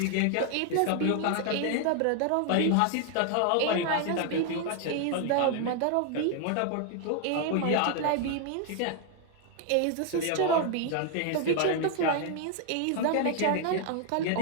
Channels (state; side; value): different; both; correlation 0.00